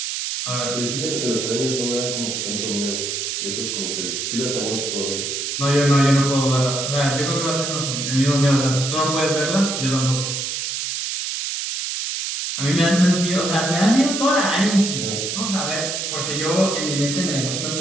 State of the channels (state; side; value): noise; right; hiss, 3 dB below the sound